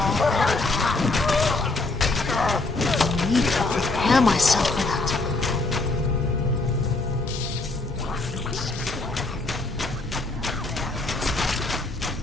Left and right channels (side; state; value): right; quieter; 3.2 dB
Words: I need to prepare myself for that.